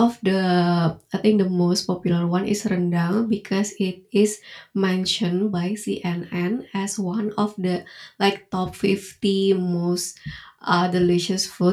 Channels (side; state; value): both; identical; correlation 1.00